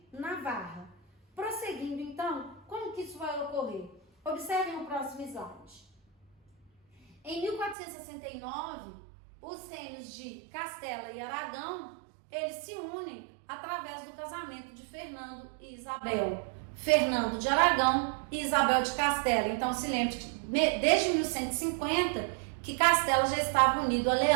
Navarra. Prosseguindo então, como que isso vai ocorrer? Observem o próximo slide. Em 1469, os reinos de Castela e Aragão, eles se unem através do casamento de Fernando e Isabel. Fernando de Aragão e Isabel de Castela. Então se lembre que desde 1150 que Castela já estava unido a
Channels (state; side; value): drops out; left; at 7.8 s